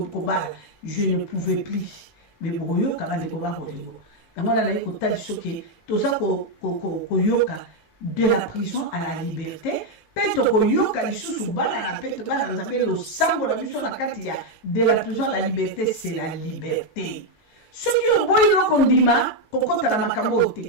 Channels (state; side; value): late; right; 18 ms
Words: bal je ne pouvais plus mais boyo ka bande ko ba bolingo ngala na ko tali soke to za ko yoka de la prison à la liberté peto ko yoka lisusu bala na peto bala na Nzambe lo sango la mission na kati ya de la prison à la liberté c'est la liberté ce qui est boyo ko ndima ko kota na makambo